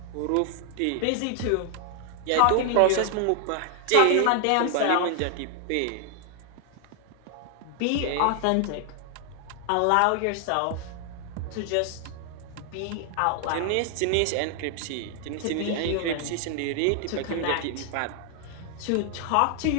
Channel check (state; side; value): different; both; correlation 0.00